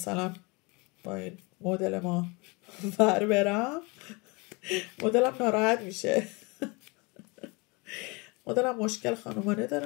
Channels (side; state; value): right; quieter; 27.7 dB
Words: با این مدل ما ور برم، مدلم ناراحت میشه مدلم مشکل خانمانه